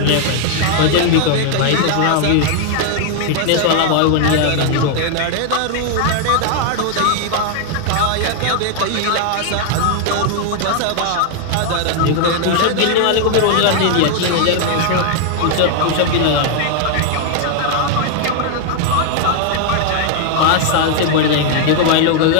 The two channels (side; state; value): both; different; correlation 0.00